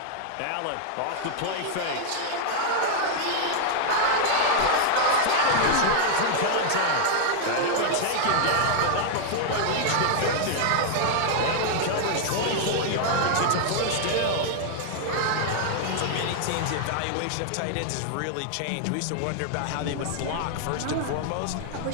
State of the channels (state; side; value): different; both; correlation 0.00